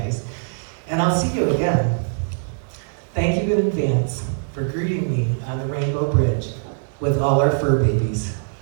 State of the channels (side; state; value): left; silent; digital silence